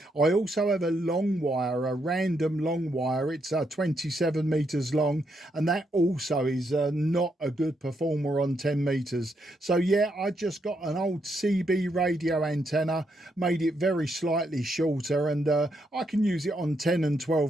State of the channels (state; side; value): normal; both; correlation 0.78